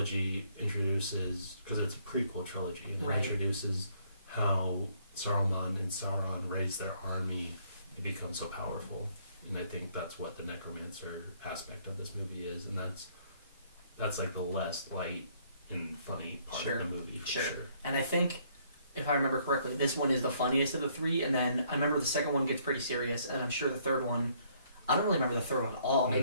introduces, because it's a prequel trilogy, and it introduces how Saruman and Sauron raise their army and become so powerful. And I think that's what the necromancer aspect of this movie is, and that's like the less light and funny part of the movie for sure. And I think, if I remember correctly, this one is the funniest of the three, and then I remember the second one gets pretty serious, and I'm sure the third one, I don't really remember the third one at all.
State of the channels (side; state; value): both; inverted; correlation -0.66